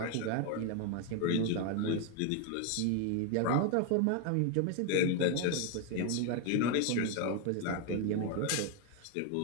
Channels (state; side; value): different; both; correlation 0.01